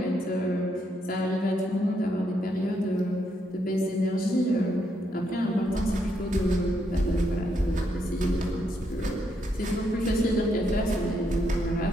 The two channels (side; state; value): both; normal; correlation 0.77